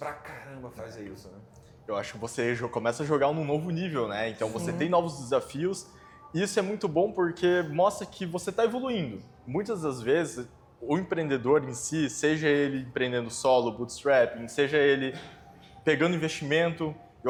caramba fazer isso, né? Eu acho que você começa a jogar num novo nível, né? Então você tem novos desafios. E isso é muito bom porque mostra que você está evoluindo. Muitas das vezes, o empreendedor em si, seja ele empreendendo solo, bootstrapping, seja ele pegando investimento,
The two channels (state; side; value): identical; both; correlation 1.00